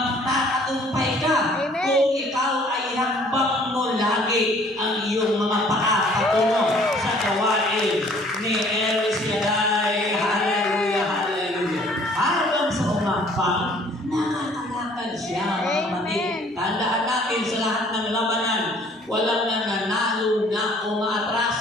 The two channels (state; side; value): normal; both; correlation 0.57